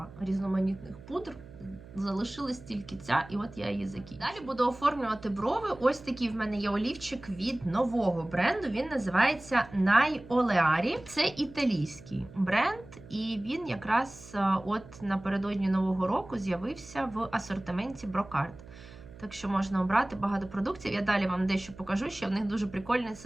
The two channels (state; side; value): noise; right; hum, 18 dB below the sound